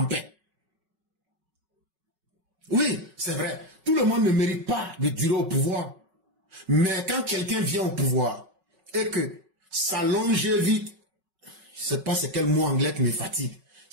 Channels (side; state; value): left; late; 5.4 ms